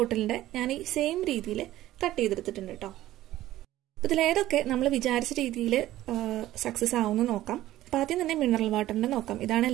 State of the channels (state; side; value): quieter; left; 14.8 dB